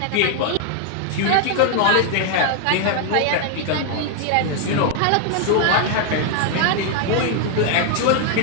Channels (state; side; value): different; both; correlation 0.00